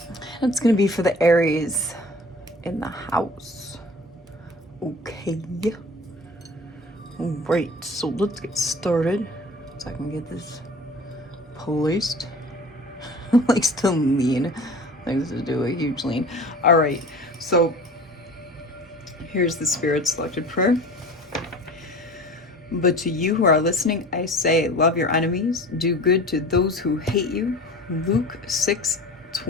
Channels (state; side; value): normal; both; correlation 0.40